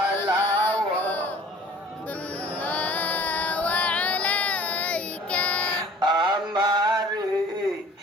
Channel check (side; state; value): both; normal; correlation 0.49